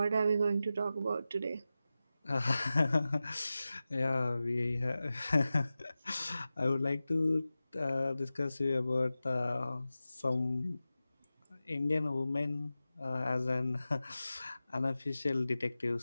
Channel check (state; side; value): inverted; both; correlation -0.95